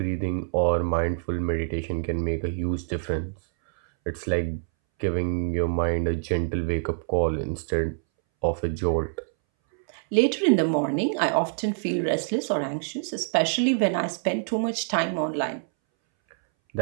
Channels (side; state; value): left; silent; 61 dB below the other